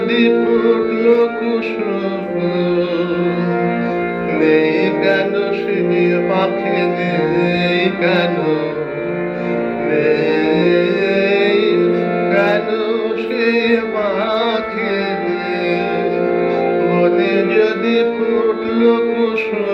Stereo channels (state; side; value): identical; both; correlation 1.00